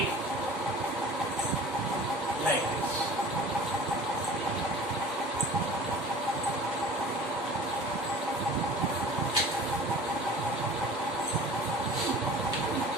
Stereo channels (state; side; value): normal; both; correlation 0.42